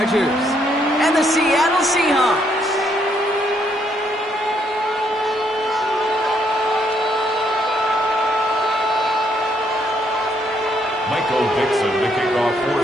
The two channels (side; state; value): both; normal; correlation 0.72